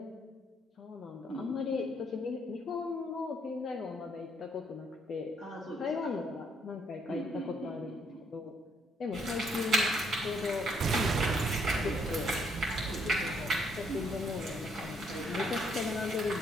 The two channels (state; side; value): normal; both; correlation 0.70